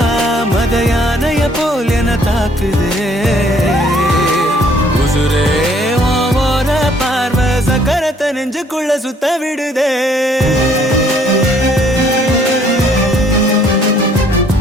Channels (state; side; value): normal; both; correlation 0.62